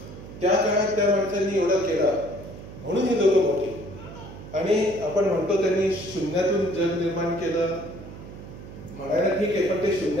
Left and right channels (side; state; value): right; noise; hum, 14 dB below the sound